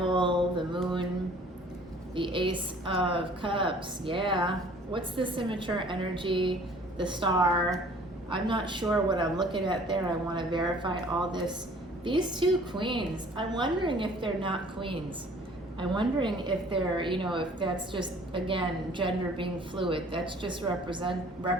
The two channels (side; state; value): both; normal; correlation 0.53